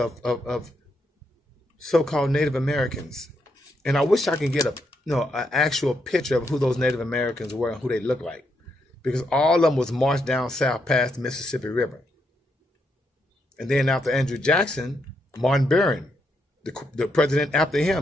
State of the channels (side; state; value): both; normal; correlation 0.79